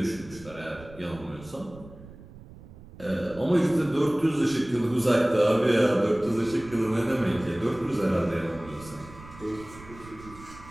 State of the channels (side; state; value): right; noise; rumble, 19 dB below the sound